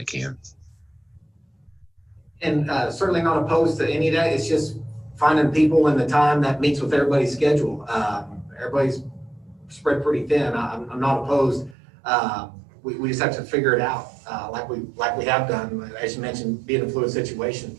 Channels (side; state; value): left; drops out; at 11.8 s